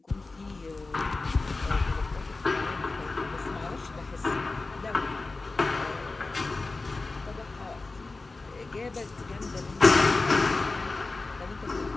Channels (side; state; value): right; quieter; 3.5 dB